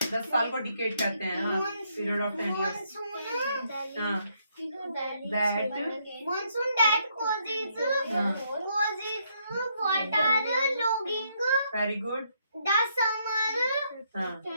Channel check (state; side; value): inverted; both; correlation -0.73